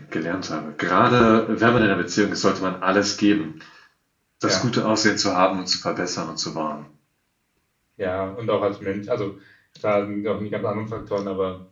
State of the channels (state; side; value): identical; both; correlation 1.00